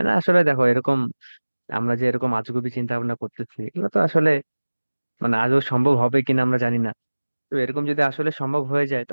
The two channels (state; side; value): inverted; both; correlation -1.00